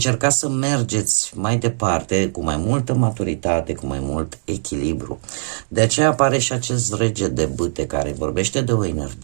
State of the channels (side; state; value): left; silent; digital silence